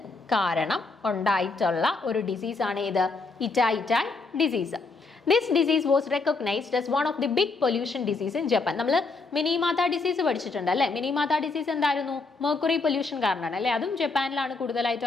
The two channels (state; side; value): quieter; right; 3.9 dB